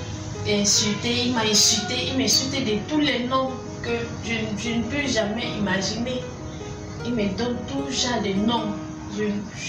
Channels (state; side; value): identical; both; correlation 1.00